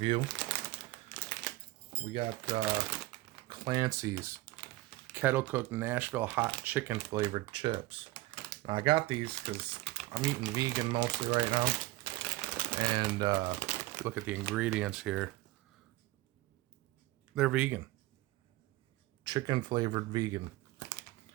We got Clancy's kettle cooked Nashville Hot Chicken flavored chips. Now, I got these because I'm eating vegan mostly right now. And look at the ingredients here. They're vegan. Chicken flavored vegan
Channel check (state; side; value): quieter; left; 18.8 dB